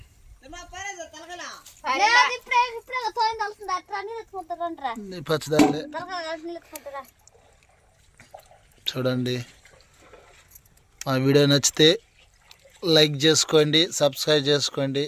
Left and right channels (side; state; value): both; identical; correlation 1.00